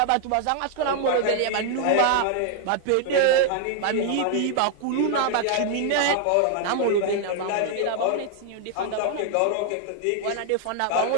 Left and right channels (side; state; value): both; different; correlation 0.00